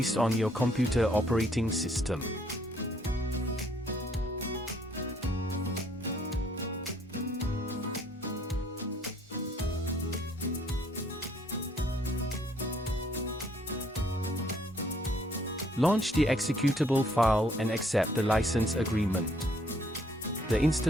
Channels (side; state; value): both; normal; correlation 0.65